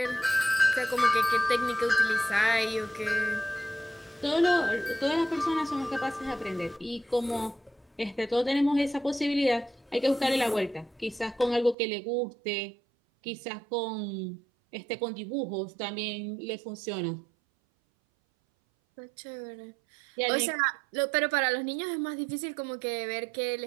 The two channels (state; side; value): drops out; left; at 11.8 s